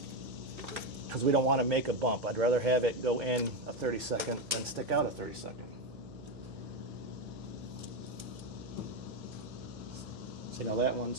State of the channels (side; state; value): right; noise; hum, 17 dB below the sound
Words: Because we don't want to make a bump. I'd rather have it go in a 32nd than stick out a 32nd. See, now that